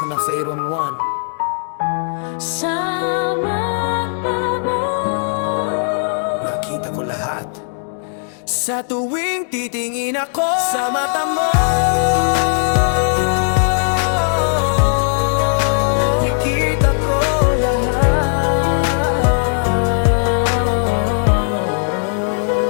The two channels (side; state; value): right; silent; digital silence